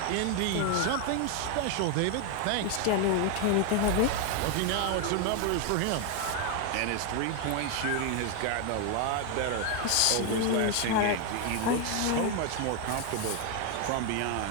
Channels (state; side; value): different; both; correlation 0.01